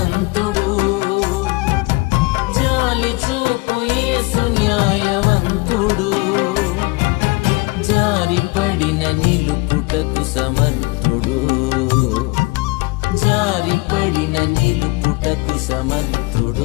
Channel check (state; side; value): quieter; right; 24.6 dB